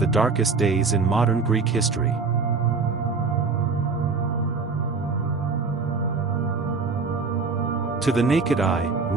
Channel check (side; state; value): left; quieter; 4.6 dB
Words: darkest days in modern Greek history. To the naked eye,